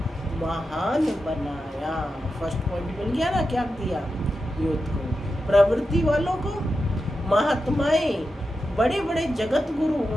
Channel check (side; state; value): both; normal; correlation 0.89